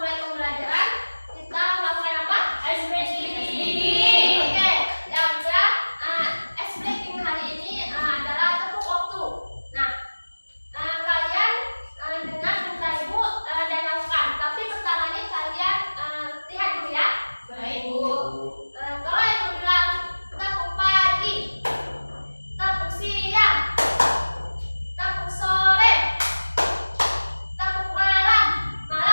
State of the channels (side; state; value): both; inverted; correlation -1.00